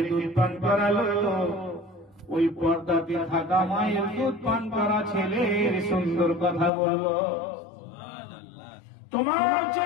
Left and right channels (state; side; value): drops out; right; at 6.7 s